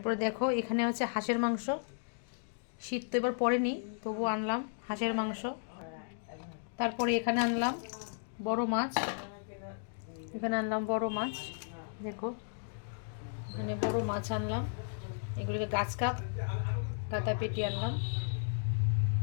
দেখো এখানে হচ্ছে হাঁসের মাংস। শীত তো এবার পড়েনি, তবু আনলাম হাঁসের মাংস। তারপরে এখানে আনলাম বড় মাছ। দেখো এখানে বড় মাছ আনলাম। এগুলিকে গাছ কাপ কাতা পেটি আনলাম।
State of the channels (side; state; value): right; silent; digital silence